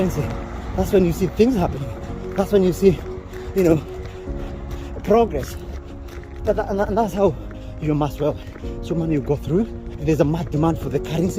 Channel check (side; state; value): both; identical; correlation 1.00